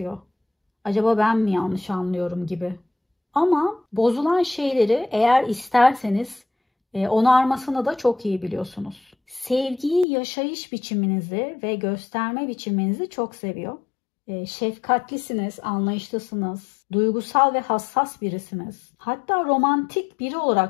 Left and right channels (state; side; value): drops out; right; at 10.1 s